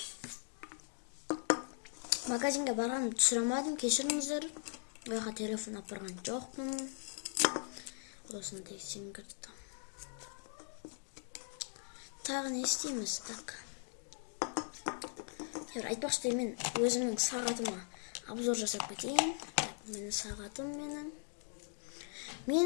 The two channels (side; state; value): right; silent; 52 dB below the other